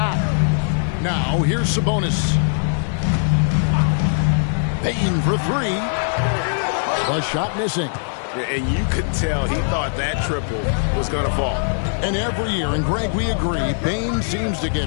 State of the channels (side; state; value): right; silent; digital silence